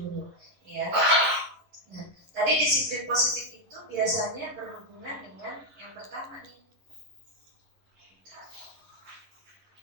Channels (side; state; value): left; late; 11 ms